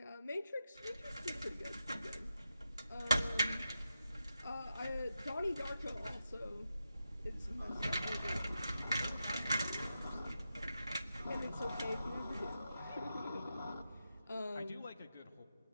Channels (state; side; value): inverted; both; correlation -0.88